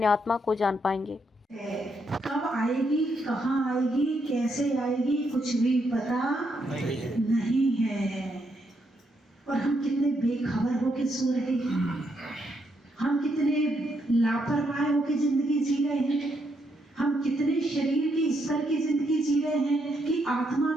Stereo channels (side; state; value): both; normal; correlation 0.77